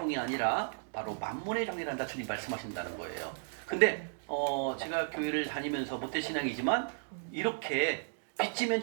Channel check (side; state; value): left; silent; digital silence